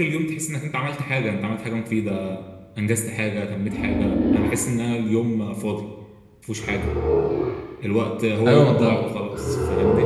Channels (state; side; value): identical; both; correlation 1.00